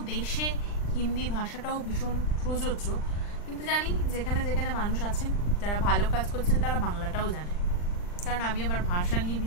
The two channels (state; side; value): late; right; 40 ms